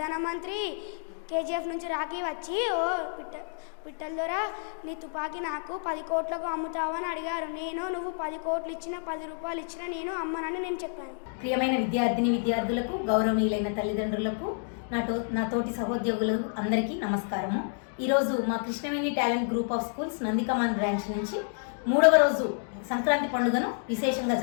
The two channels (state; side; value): silent; right; 58 dB below the other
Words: కేజీఎఫ్ నుంచి రాఖీ వచ్చి ఓ పిట్టల ద్వారా నీ తుపాకీ నాకు 10 కోట్లకు అమ్ముతావని అడిగారు. నువ్వు 10 కోట్లు ఇచ్చినా 10 రూపాయలు ఇచ్చినా నేను అమ్మనని నేను చెప్పాను. ప్రియమైన విద్యార్థులకు, గౌరవనీయులైన తల్లిదండ్రులకు, నా తోటి సహోద్యోగులు అందరికీ నమస్కారము. ఈరోజు మా Krishnaveni talent group of schools Nandikaman branch నుంచి 3వ రోజు సంక్రాంతి పండుగను విశేషంగా